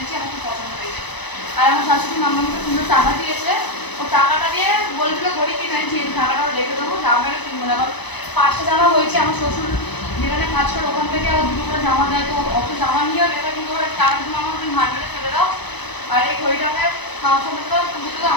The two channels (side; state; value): right; late; 0.99 ms